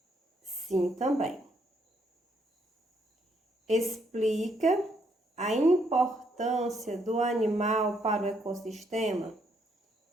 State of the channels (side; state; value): both; normal; correlation 0.72